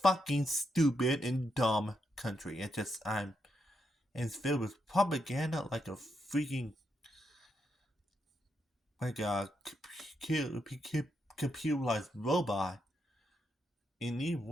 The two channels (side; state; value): both; normal; correlation 0.81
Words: stupid and dumb country. And it's filled with propaganda like a freaking like a computerized robot. In these